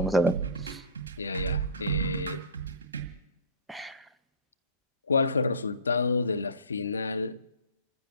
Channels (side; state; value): both; inverted; correlation -0.33